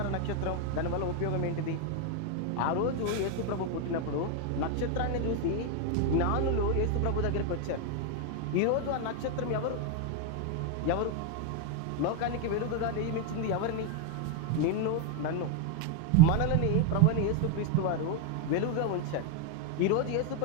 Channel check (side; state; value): both; different; correlation 0.01